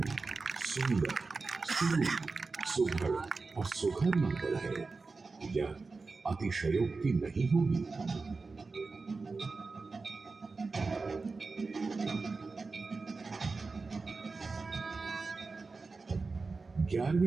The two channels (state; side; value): quieter; left; 4.1 dB